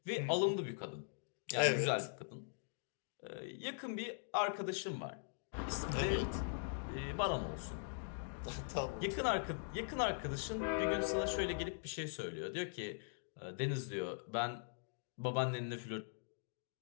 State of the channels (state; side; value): silent; right; digital silence